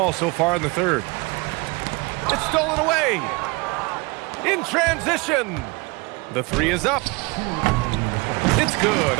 so far in the third. It's stolen away. In transition. The three is up. It's good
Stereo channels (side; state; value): left; quieter; 26.3 dB